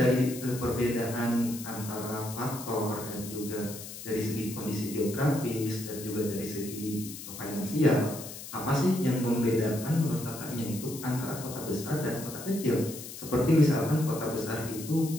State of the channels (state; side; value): noise; left; hiss, 11 dB below the sound